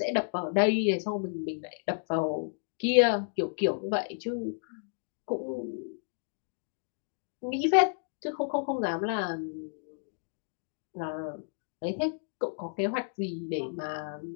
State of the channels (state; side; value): silent; right; digital silence